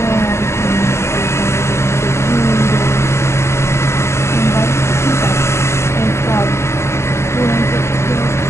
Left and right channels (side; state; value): right; late; 0.13 ms